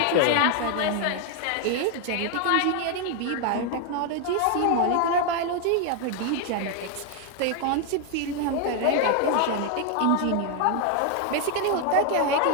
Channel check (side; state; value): both; different; correlation 0.01